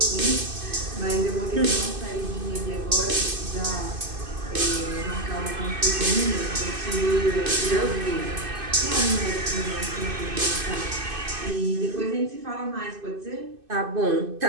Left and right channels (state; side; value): late; left; 2.6 ms